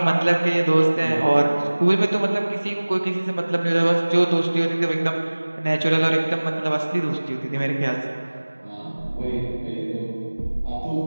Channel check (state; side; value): inverted; both; correlation -1.00